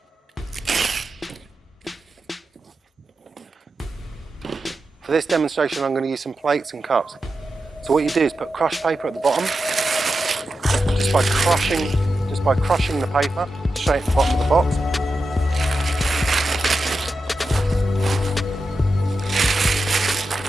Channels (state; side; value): normal; both; correlation 0.89